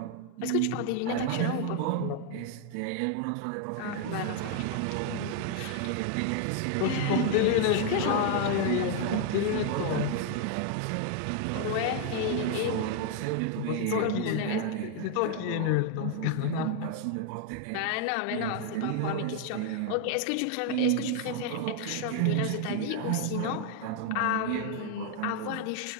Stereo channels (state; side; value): different; both; correlation 0.00